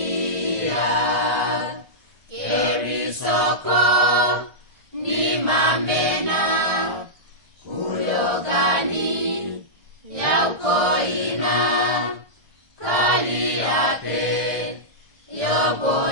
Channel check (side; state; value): left; late; 1.4 ms